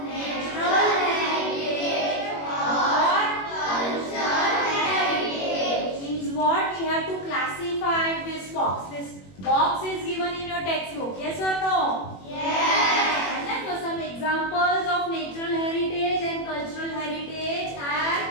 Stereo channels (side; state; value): right; late; 21 ms